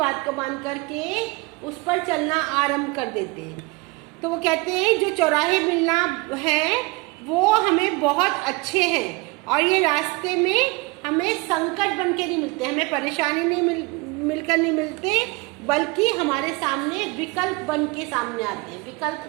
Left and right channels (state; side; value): quieter; left; 25.7 dB